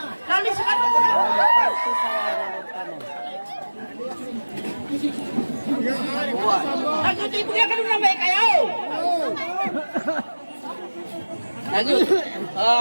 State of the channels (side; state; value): both; inverted; correlation -1.00